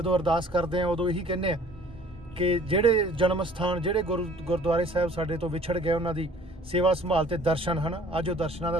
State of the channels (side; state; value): both; normal; correlation 0.53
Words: ਅਰਦਾਸ ਕਰਦੇ ਆ ਉਦੋਂ ਇਹੀ ਕਹਿੰਦੇ ਆ ਕਿ ਜਿਹੜੇ ਜਨਮ ਸਥਾਨ, ਜਿਹੜੇ ਗੁਰਦੁਆਰੇ ਸਾਹਿਬ ਸਾਡੇ ਤੋਂ ਵਿਛੜ ਗਏ, ਉਹਨਾਂ ਦੀ ਸੇਵਾ ਸੰਭਾਲ ਤੇ ਦਰਸ਼ਨ ਹਨ। ਅੱਜ ਉਹ ਦਰਸ਼ਨਾਂ